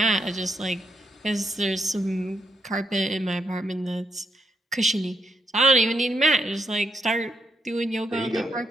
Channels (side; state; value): both; normal; correlation 0.79